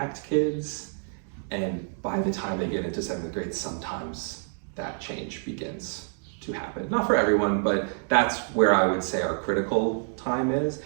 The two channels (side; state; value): left; silent; 60 dB below the other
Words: kids. And by the time they get into 7th grade, sometimes that change begins to happen. Not for everyone, but that's where I would say our critical time is.